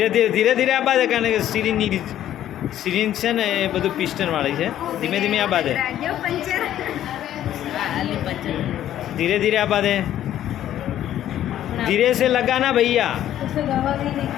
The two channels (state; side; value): quieter; right; 11.9 dB